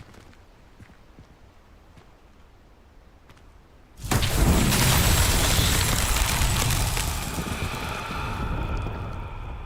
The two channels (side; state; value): both; identical; correlation 1.00